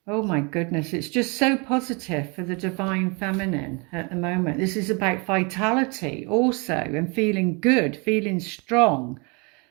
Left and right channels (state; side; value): quieter; left; 31.1 dB